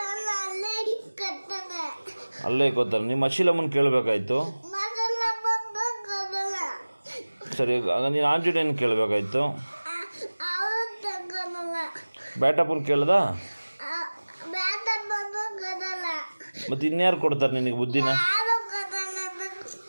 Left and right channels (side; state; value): both; inverted; correlation -1.00